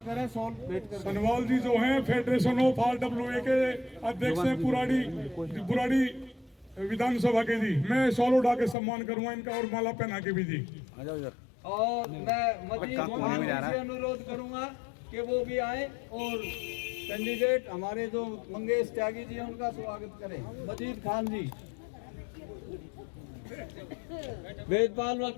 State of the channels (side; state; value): right; drops out; at 8.8 s